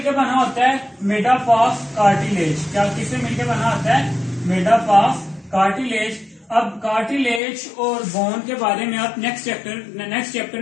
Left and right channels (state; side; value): drops out; right; at 7.4 s